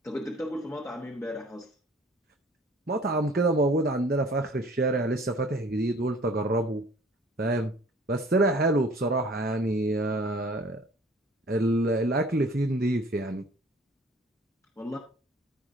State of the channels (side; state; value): both; normal; correlation 0.51